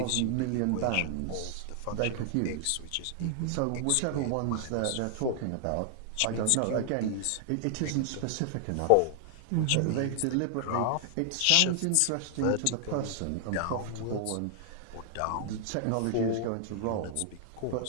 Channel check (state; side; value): different; both; correlation 0.00